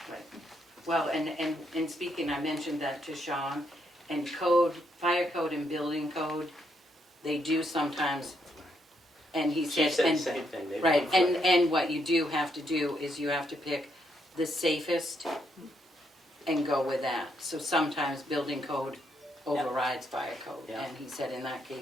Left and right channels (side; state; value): both; normal; correlation 0.76